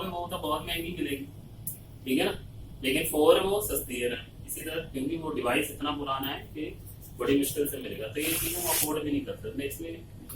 वो तो बहुत महंगी मिलेगी। ठीक है ना, लेकिन 4 वो सस्ती है रैम। इसी तरह क्योंकि वो डिवाइस इतना पुराना है कि बड़ी मुश्किल से मिलेगा, तो ये चीज हम अफोर्ड भी नहीं कर सकते। इसमें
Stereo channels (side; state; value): both; identical; correlation 1.00